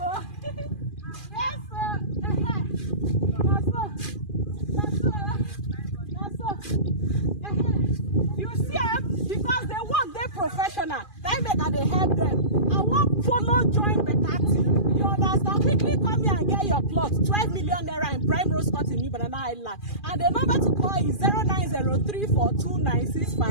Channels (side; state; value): right; late; 2.4 ms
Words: Yes, That's so. You see, because they work, they're professional. They make that they help them. I won't follow join better team. You understand? Quickly come here and get your plot. 12 million naira in Primerose Court in Banana Island. And the number to call is